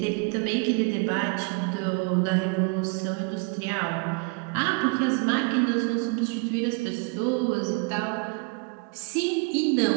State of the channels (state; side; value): quieter; left; 31.8 dB